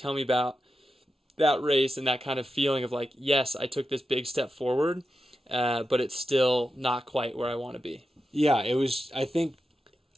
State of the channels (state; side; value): normal; both; correlation 0.90